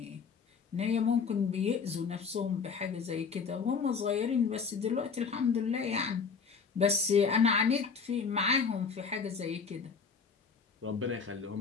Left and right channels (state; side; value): quieter; right; 5.7 dB